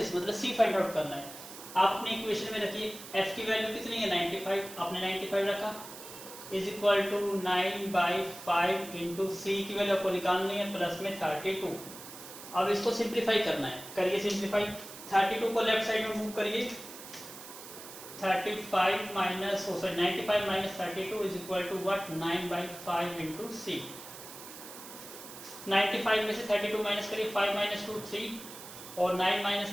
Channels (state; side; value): noise; right; hiss, 14 dB below the sound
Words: मतलब सी फाइंड आउट करना है। आप अपने इक्वेशन में रखिए एफ की वैल्यू कितनी है 95, आपने 95 रखा, इज इक्वल टू 9/5 इंटू सी की वैल्यू आपको निकालनी है प्लस में 32। अब इसको सिंप्लीफाई करना है, करिए सिंप्लीफाई। 32 को लेफ्ट साइड में मूव करिए, 35 minus 95 minus 32 is equal to what, 9/5 into C. 95 में से 32 माइनस करिए, 5 माइनस 2 3 और 9